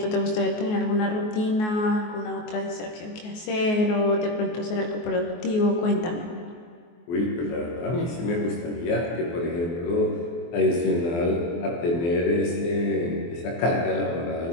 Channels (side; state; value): right; late; 24 ms